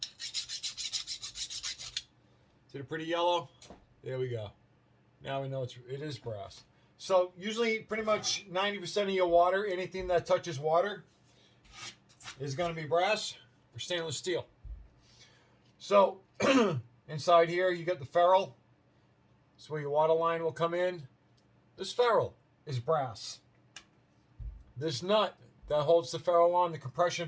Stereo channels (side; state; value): both; identical; correlation 1.00